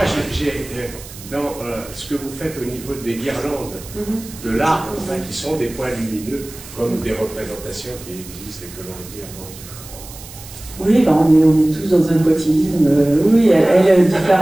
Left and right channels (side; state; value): right; noise; hiss, 16 dB below the sound